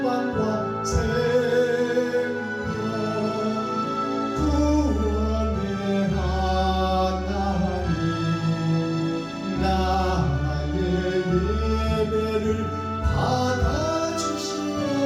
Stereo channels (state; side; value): identical; both; correlation 1.00